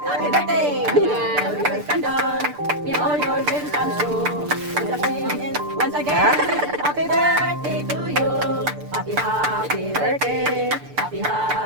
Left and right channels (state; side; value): late; left; 6.8 ms